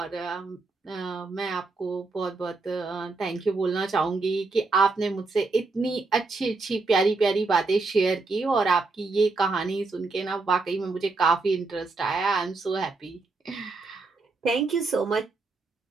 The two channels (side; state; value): left; quieter; 3.7 dB